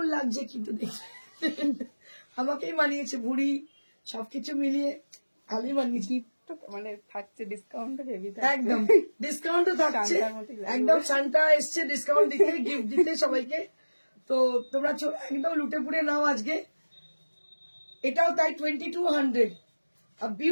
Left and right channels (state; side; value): inverted; both; correlation -1.00